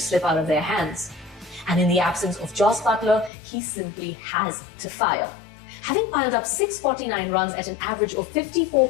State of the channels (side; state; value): right; drops out; at 3.3 s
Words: slip out of their hands. And in the absence of Jos Buttler, he simply has to fire. Having piled up 649 runs at an average of